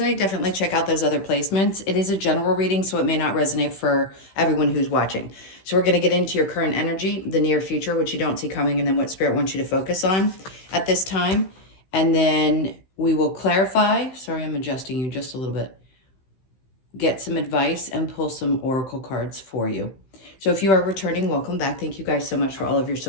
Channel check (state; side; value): late; right; 15 ms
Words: definitely check out those other placements. It is a general reading, so it may not resonate for everyone who's watching. So we're going to get into your current energy, the near future, which you don't see coming, and then what Spirit wants you to focus on at this time. And then we will clarify. Sorry, I'm adjusting you just a little bit. Get some advice and pull some oracle cards for you. So if you are returning, welcome back. Thank you guys so much for all of your